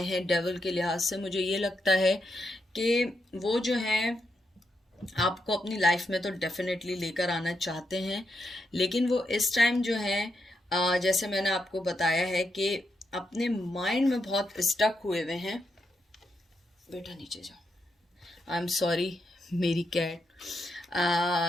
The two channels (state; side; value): normal; both; correlation 0.83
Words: हैं डेविल के लिहाज से, मुझे ये लगता है कि वो जो है आपको अपनी लाइफ में तो डेफिनेटली लेकर आना चाहते हैं, लेकिन वो इस टाइम जो है जैसे मैंने आपको बताया है कि अपने माइंड में बहुत स्टक हुए हुए हैं। बेटा नीचे जाओ। आई एम सॉरी, मेरी कैट